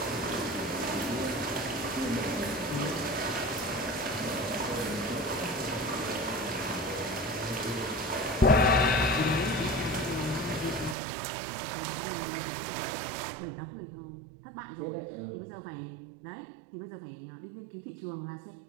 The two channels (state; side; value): drops out; left; at 11.0 s